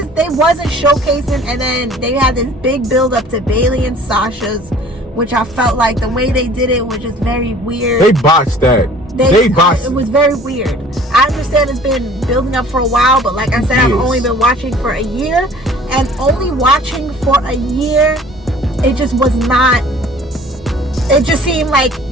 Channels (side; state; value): both; normal; correlation 0.50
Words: they wasn't showcasing, and then they had this big build up to Bailey and Sasha's, which I felt like the way they did it was just very weird. They botched that. They botched it. Was very weird. I understand it's been building up for a while, but like I said, I've only been watching for a year, and only watching for a year, it just was not. It just seemed like